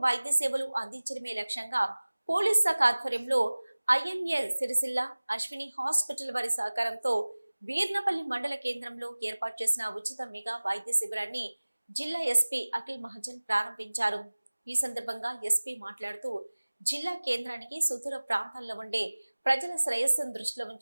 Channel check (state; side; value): inverted; both; correlation -1.00